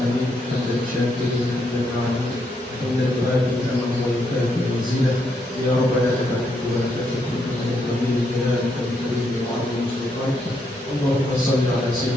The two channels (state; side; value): normal; both; correlation 0.77